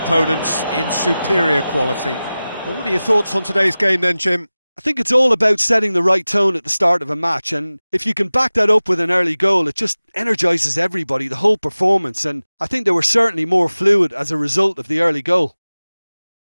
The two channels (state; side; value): inverted; both; correlation -0.97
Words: in superior quality. Well, what are your thoughts on today's game then, Jim? I think it's all about setting the right tone at the start of a match, and if you can back that up with an early goal, it just energises everybody, the whole performance, and I think they were certainly more fluid as a result of the early goal.